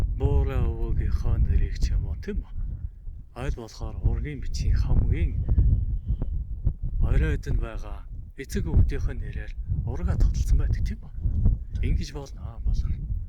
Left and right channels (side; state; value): both; identical; correlation 1.00